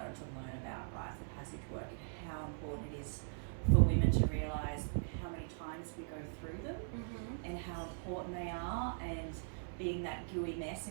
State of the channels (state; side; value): silent; left; 51 dB below the other